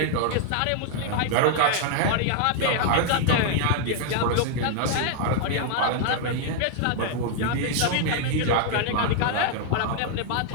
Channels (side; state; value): both; different; correlation 0.00